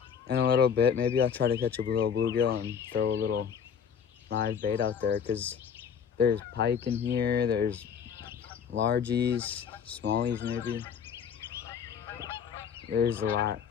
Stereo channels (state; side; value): quieter; right; 7.4 dB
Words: in a little bit, maybe I'll try to catch a little bluegill and throw a little live bait out there, because there's pike in here, there's largies, smallies maybe. There's a lot.